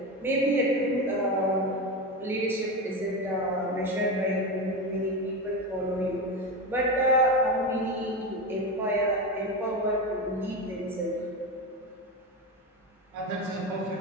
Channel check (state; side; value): normal; both; correlation 0.19